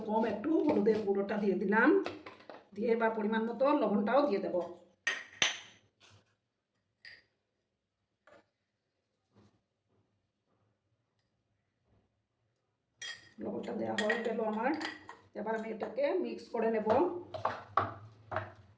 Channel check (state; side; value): identical; both; correlation 1.00